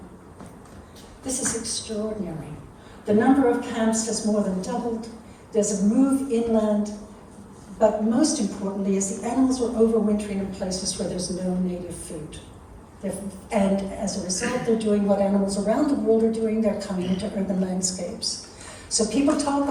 This is extraordinary. The number of camps has more than doubled. There's a move inland, but most importantly is the animals are overwintering in places where there's no native food. And as a result, they're doing what animals around the world are doing. They're coming into urban landscapes. So people talk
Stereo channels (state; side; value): identical; both; correlation 1.00